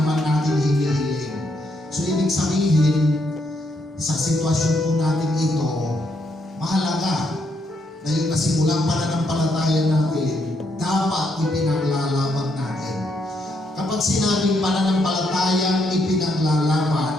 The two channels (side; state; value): both; normal; correlation 0.76